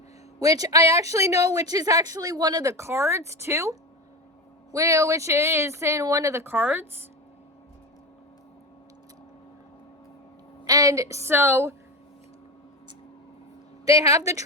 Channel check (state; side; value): normal; both; correlation 0.22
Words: which I actually know, which is actually one of the cards too, which is in one of the cards. And so they have the